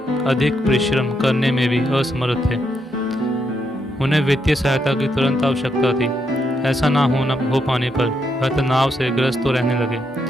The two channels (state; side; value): normal; both; correlation 0.79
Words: अधिक परिश्रम करने में भी असमर्थ थे। उन्हें वित्तीय सहायता की तुरंत आवश्यकता थी। ऐसा ना हो पाने पर वह तनाव से ग्रस्त तो रहने लगे।